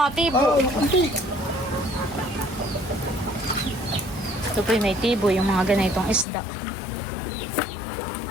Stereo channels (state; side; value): drops out; right; at 6.2 s